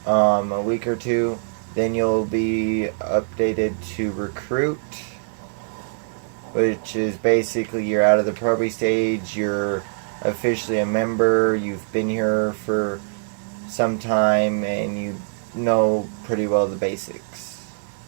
A week or two, then you'll be updated to recruit, which is basically you're out of the probie stage, you're officially a member, you've been here for some time, and you know pretty well the basics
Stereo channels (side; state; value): left; silent; digital silence